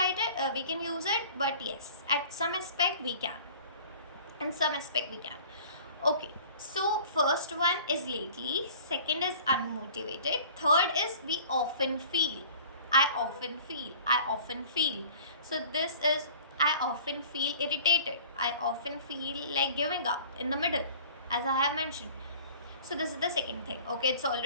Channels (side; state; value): both; inverted; correlation -0.46